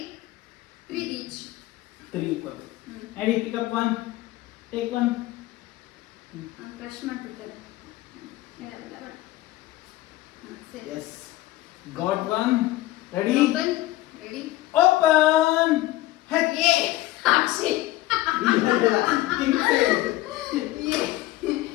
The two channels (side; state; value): right; quieter; 16.7 dB